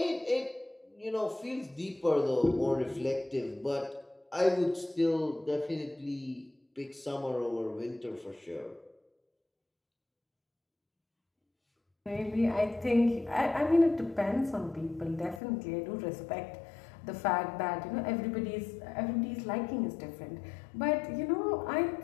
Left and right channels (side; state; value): right; drops out; at 15.4 s